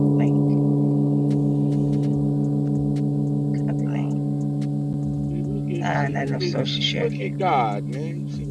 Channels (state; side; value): identical; both; correlation 1.00